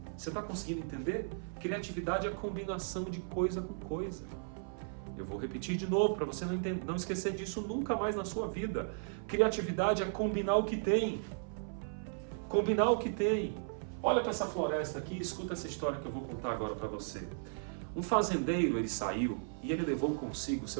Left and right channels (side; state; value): left; silent; 54 dB below the other